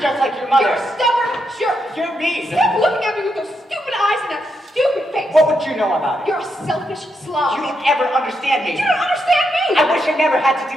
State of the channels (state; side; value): normal; both; correlation 0.81